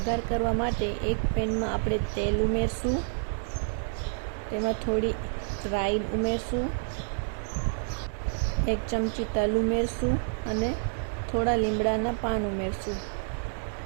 કરવા માટે એક પેનમાં આપણે તેલ ઉમેરશું, તેમાં થોડી રાઈ ઉમેરશું, 1 ચમચી તલ ઉમેરશું અને થોડા લીમડાના પાન ઉમેરશું।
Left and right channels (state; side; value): silent; left; 59 dB below the other